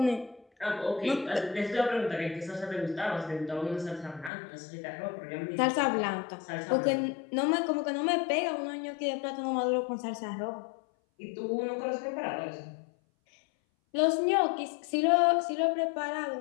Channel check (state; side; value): drops out; right; at 4.3 s